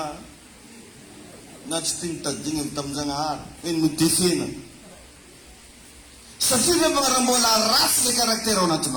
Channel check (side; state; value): both; identical; correlation 1.00